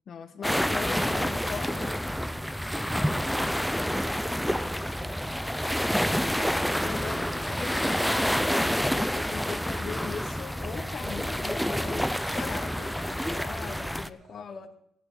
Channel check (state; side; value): normal; both; correlation 0.98